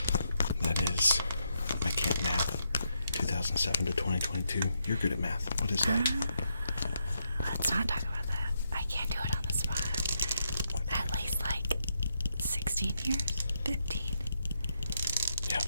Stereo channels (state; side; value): inverted; both; correlation -0.80